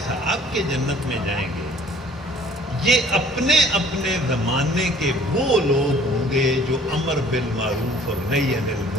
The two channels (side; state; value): both; normal; correlation 0.54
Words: کے جنت میں جائیں گے یہ اپنے اپنے زمانے کے وہ لوگ ہوں گے جو امر بالمعروف اور نہی عن